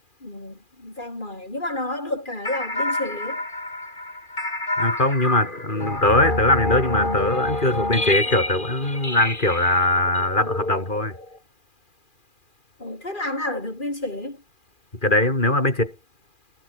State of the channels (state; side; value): late; right; 2.4 ms